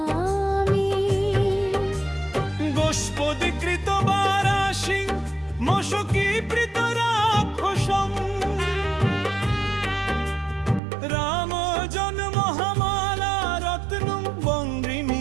গোষ্পদীকৃত বারাশি মশকি প্রীত রাক্ষসম রাম জন্ম মহামালা রত্নং বন্দ্রি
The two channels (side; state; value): left; drops out; at 10.8 s